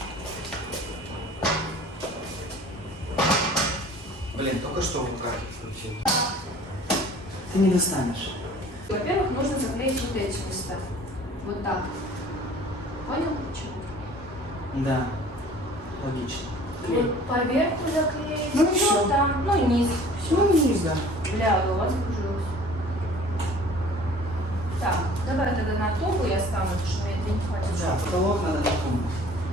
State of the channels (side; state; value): both; normal; correlation 0.48